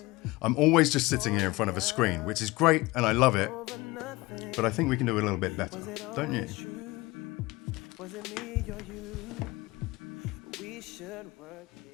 I'm always just sitting here in front of a screen, which is great and I love it, but I think we can do it a little bit better, don't you? Was it me or you? We should work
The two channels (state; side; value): quieter; right; 21.3 dB